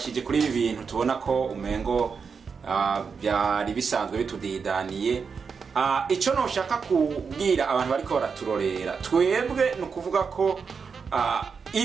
kuri ibi bintu tubona ko umengo byari bisanzwe bitudidaniye. Icyo noshaka kubwira abantu bariko baraturorera, twebwe nukuvuga ko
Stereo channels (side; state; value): left; quieter; 5.7 dB